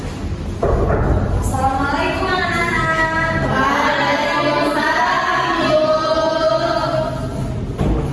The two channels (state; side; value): identical; both; correlation 1.00